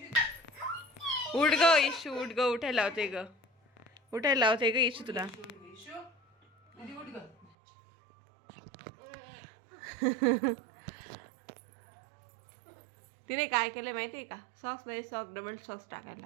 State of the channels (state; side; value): drops out; left; at 7.5 s